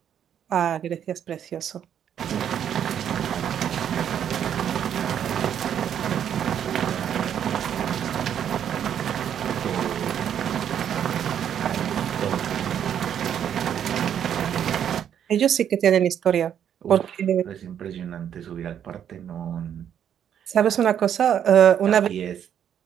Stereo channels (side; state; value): left; quieter; 9.2 dB